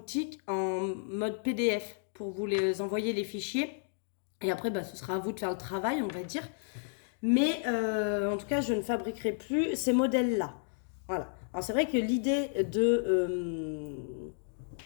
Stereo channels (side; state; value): right; silent; digital silence